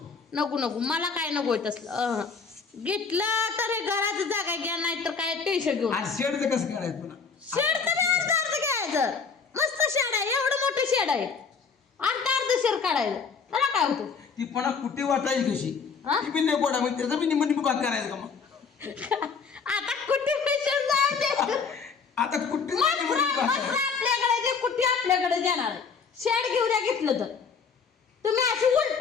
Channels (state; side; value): quieter; right; 5.5 dB